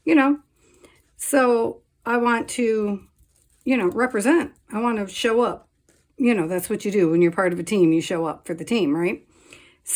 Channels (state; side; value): identical; both; correlation 1.00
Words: you know. So I want to, you know, represent. I want to show up. You know, that's what you do when you're part of a team. You show up for the team, right?